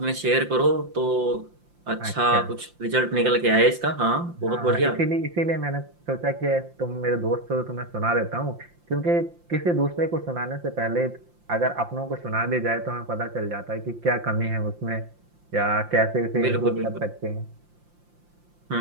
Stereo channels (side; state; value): left; late; 5.7 ms